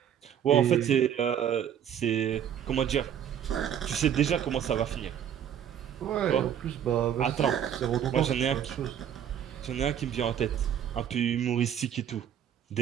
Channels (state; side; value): quieter; left; 9.4 dB